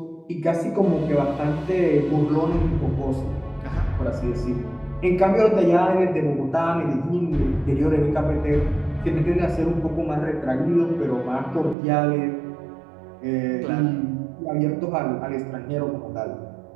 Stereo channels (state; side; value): drops out; left; at 11.8 s